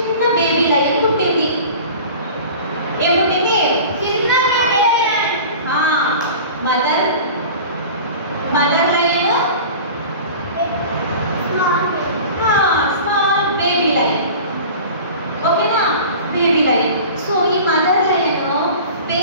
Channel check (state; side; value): inverted; both; correlation -0.39